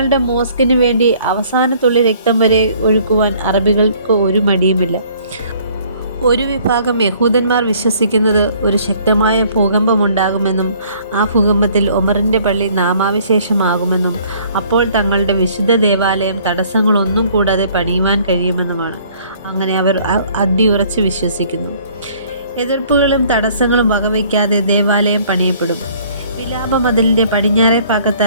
മോസ്കിന് വേണ്ടി അവസാനത്തുള്ളി രക്തം വരെ ഒഴുക്കുവാൻ അറബികൾക്ക് ഒരു മടിയുമില്ല. ഒരു വിഭാഗം യഹൂദന്മാർ വിശ്വസിക്കുന്നത് ഒരു ശക്തമായ ഭൂകമ്പമുണ്ടാകുമെന്നും ആ ഭൂകമ്പത്തിൽ ഒമറിൻ്റെ പള്ളി നാമാവിശേഷമാകുമെന്നും അപ്പോൾ തങ്ങളുടെ വിശുദ്ധ ദേവാലയം തടസ്സങ്ങളൊന്നും കൂടാതെ പണിയുവാൻ കഴിയുമെന്നുമാണ്. അങ്ങനെ അവർ അടിയുറച്ച് വിശ്വസിക്കുന്നു. എതിർപ്പുകളും തടസ്സങ്ങളും വകവയ്ക്കാതെ ദേവാലയം പണിയപ്പെടും. വിലാപ മതിലിൻ്റെ പടിഞ്ഞാറേ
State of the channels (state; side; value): inverted; both; correlation -0.58